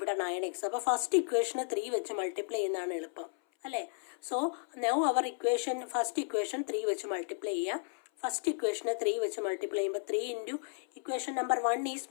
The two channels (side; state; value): right; silent; 55 dB below the other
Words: 9x. അപ്പോൾ ഫസ്റ്റ് ഇക്വേഷന് 3 വെച്ച് മൾട്ടിപ്ലൈ ചെയ്യുന്നതാണ് എളുപ്പം അല്ലേ. So now our equation first equation 3 വെച്ച് മൾട്ടിപ്ലൈ ചെയ്യുക. ഫസ്റ്റ് ഇക്വേഷന് 3 വെച്ച് മൾട്ടിപ്ലൈ ചെയ്യുമ്പോൾ 3 into equation number 1 is